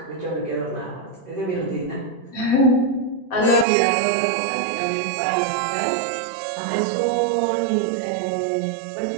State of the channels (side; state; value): left; drops out; at 3.7 s